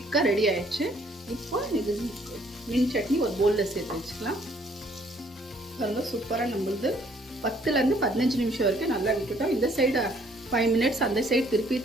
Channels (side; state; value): both; normal; correlation 0.63